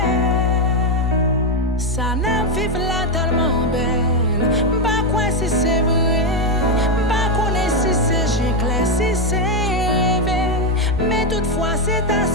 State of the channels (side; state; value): both; normal; correlation 0.05